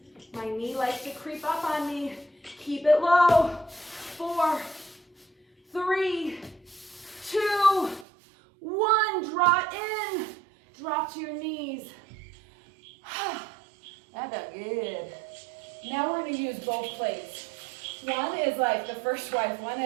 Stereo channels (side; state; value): left; drops out; at 8.1 s